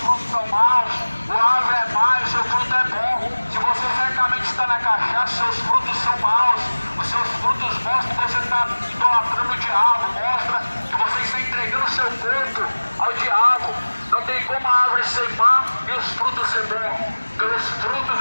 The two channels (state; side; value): inverted; both; correlation -1.00